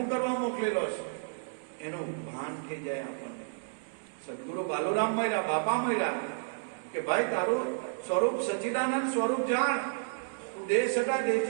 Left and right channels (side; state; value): left; silent; digital silence